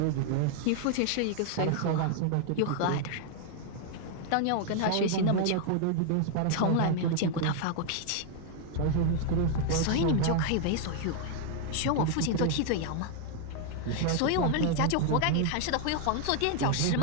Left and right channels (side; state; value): both; different; correlation 0.00